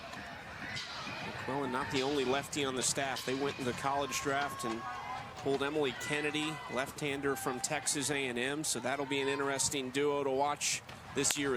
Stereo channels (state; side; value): identical; both; correlation 1.00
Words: McQuillan not the only lefty on the staff. They went in the college draft and pulled Emily Kennedy, left-hander from Texas A&M, so that'll be an interesting duo to watch this year